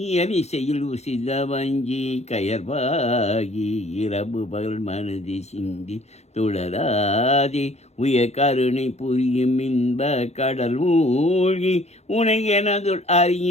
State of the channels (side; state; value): right; late; 0.31 ms